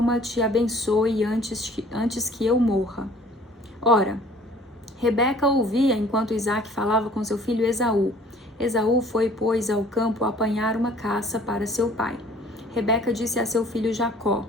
te abençoe antes que eu morra. Ora, Rebeca ouvia enquanto Isaac falava com seu filho Esaú. Esaú foi, pois, ao campo apanhar uma caça para seu pai. Rebeca disse a seu filho Jacó,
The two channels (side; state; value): both; normal; correlation 0.53